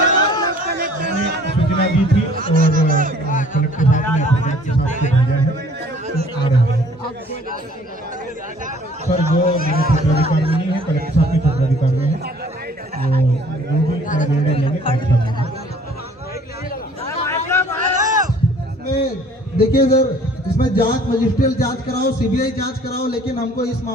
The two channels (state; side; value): normal; both; correlation 0.54